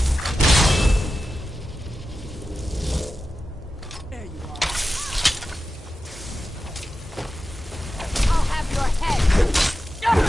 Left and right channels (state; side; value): normal; both; correlation 0.92